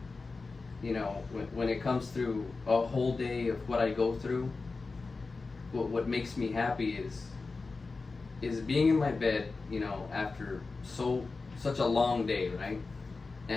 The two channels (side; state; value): right; quieter; 4.0 dB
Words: you know, when it comes through a whole day of what I go through, what makes me happy is being in my bed, you know, after such a long day, right?